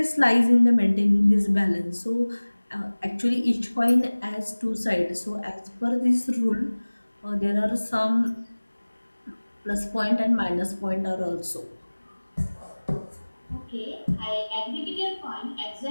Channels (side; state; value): both; inverted; correlation -1.00